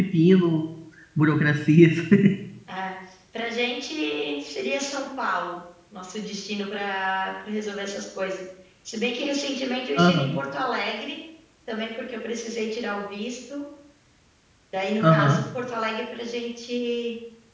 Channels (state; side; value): identical; both; correlation 1.00